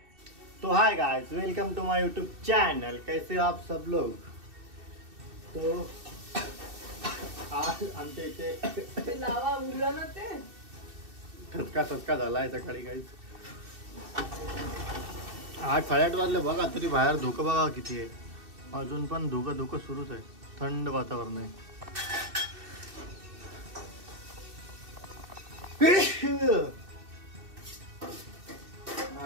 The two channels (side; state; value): left; late; 2.6 ms